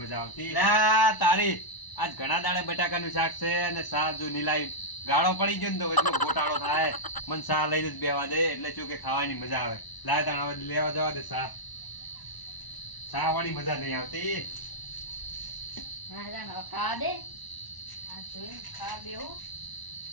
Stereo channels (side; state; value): right; late; 1.0 ms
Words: મજા આવતી. તારી આજ ઘણા દાડે બટાકાનું શાક છે અને શાહ જો નીલાઈ ગાળો પડી ગયો ને તો વચમાં ગોટાળો થાય. મને શાહ લઈને જ બેહવા દે એટલે શું કે ખાવાની મજા આવે. લાય તાણ હવે લેવા જવા દે શાહ. શાહ વાળી મજા નહીં આવતી. હા જાન હવે ખાવા દે. આ જોઈને ખાવા બેહો.